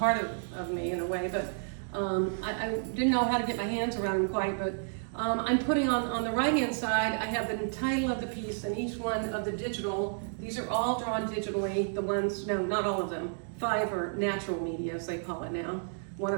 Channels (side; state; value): left; silent; digital silence